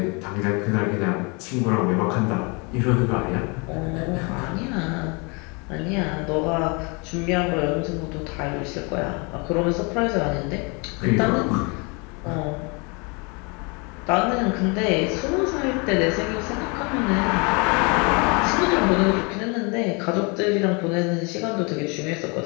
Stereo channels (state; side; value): quieter; right; 31.1 dB